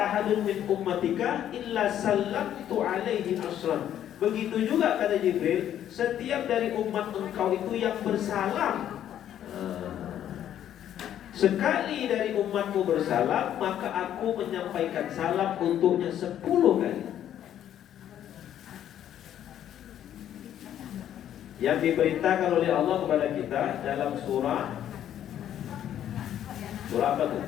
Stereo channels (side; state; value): right; quieter; 10.8 dB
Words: min ummatika illa sallamtu alaihi ashran. Begitu juga kata Jibril, setiap dari umat engkau itu yang bersalam, sekali dari umatmu bersalam, maka aku menyampaikan salam untuknya 10 kali. yang diperintahkan oleh Allah kepada kita dalam surah apa tuh?